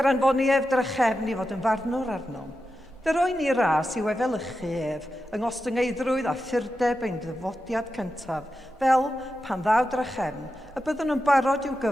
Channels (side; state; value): both; normal; correlation 0.90